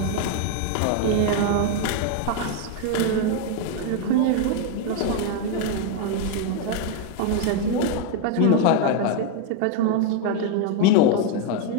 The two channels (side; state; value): both; different; correlation 0.01